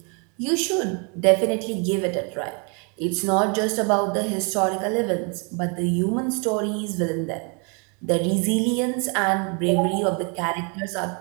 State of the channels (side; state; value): left; quieter; 35.4 dB